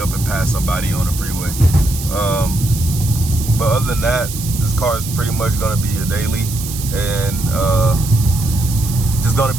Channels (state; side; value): noise; right; hiss, 9 dB below the sound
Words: and pass somebody on the freeway. But other than that, this car is pretty much gonna be a daily, and just gonna